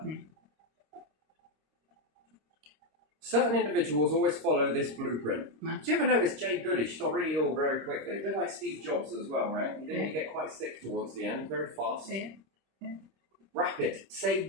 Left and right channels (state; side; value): late; left; 26 ms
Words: Mm. Certain individuals always follow this blueprint. Mm. Do you ever notice Jay Goodish got really ill very quickly? A bit like Steve Jobs as well, right? He didn't get quite sick towards the end, very fast. Yeah. Rapid. Say